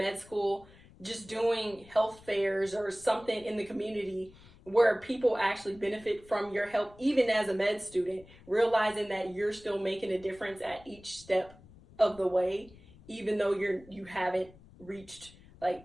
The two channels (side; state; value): left; noise; rumble, 23 dB below the sound